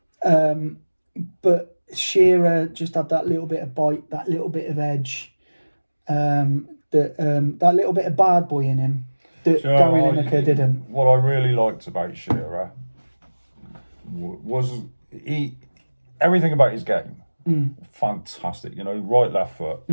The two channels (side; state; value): both; inverted; correlation -1.00